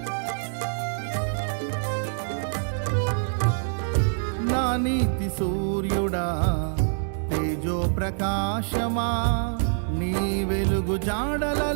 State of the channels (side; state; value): left; silent; 61 dB below the other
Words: నా నీతి సూర్యుడా తేజో ప్రకాశమా నీ వెలుగు